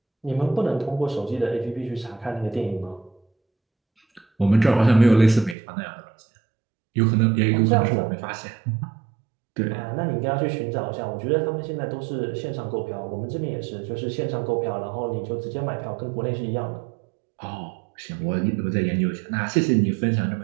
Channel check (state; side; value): drops out; left; at 5.6 s